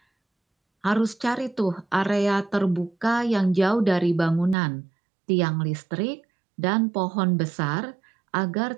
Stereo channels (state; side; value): drops out; left; at 4.5 s